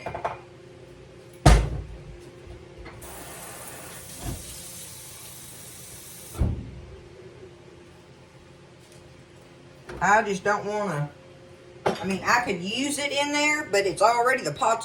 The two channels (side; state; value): both; identical; correlation 1.00